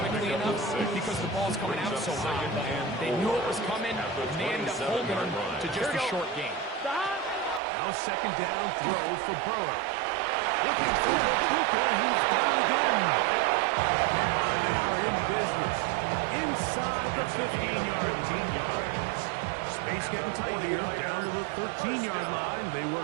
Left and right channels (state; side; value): drops out; left; at 7.6 s